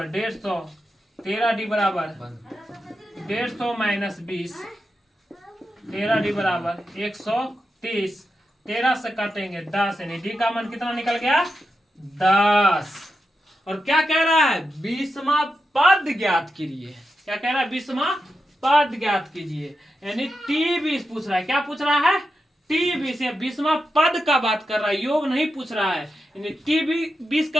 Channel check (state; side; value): normal; both; correlation 0.88